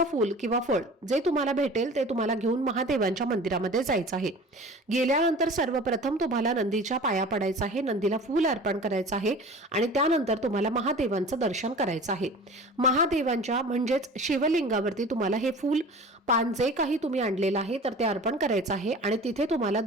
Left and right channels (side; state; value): both; normal; correlation 0.41